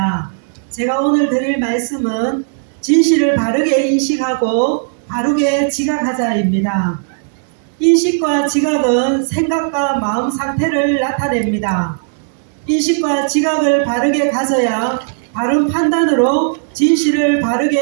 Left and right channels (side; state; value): left; silent; digital silence